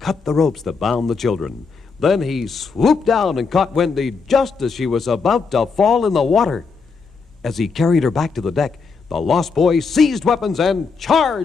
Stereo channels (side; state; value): right; quieter; 5.0 dB